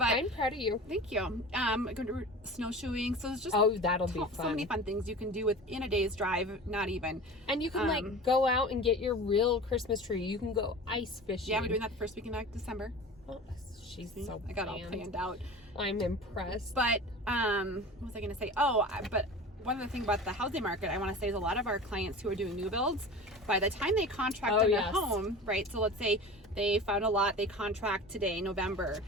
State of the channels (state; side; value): normal; both; correlation 0.35